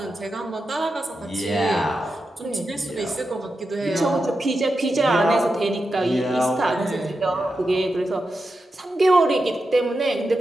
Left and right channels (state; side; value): normal; both; correlation 0.89